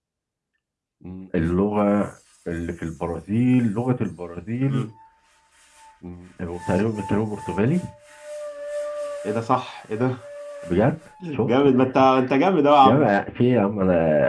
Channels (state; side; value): identical; both; correlation 1.00